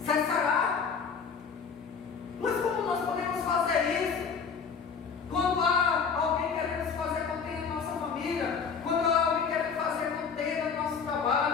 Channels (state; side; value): quieter; right; 6.0 dB